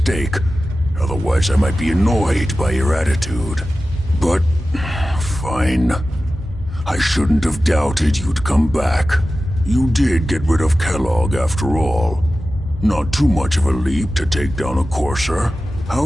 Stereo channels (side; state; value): both; normal; correlation 0.94